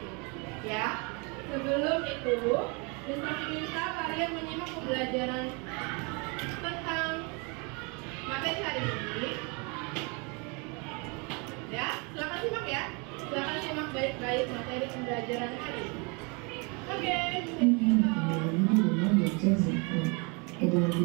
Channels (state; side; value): quieter; left; 32.0 dB